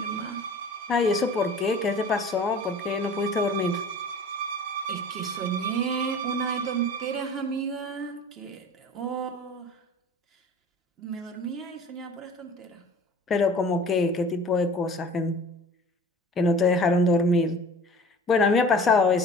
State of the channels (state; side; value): normal; both; correlation 0.43